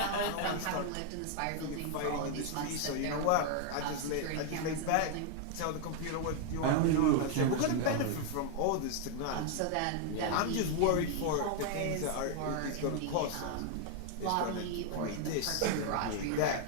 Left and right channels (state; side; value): different; both; correlation 0.00